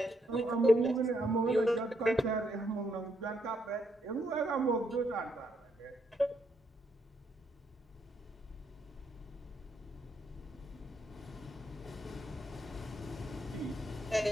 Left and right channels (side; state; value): both; normal; correlation 0.76